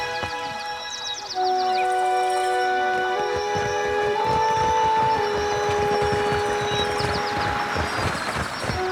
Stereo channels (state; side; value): identical; both; correlation 1.00